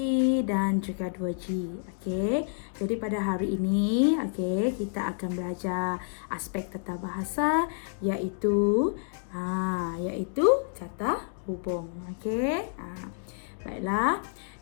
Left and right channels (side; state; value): right; silent; digital silence